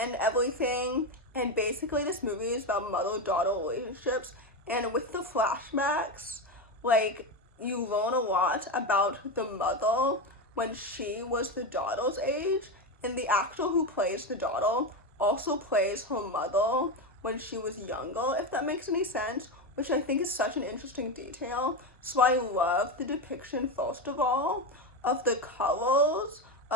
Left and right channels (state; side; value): normal; both; correlation 0.14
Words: everything, and basically this movie is about mother-daughter relationships, and with the flashbacks, like, you learn a lot about the mother when she was the daughter's age, and the actor who plays the daughter also plays her mother when she was younger, if that makes any sense, which I think is such an interesting detail. So I love the depiction, first of all, of the colors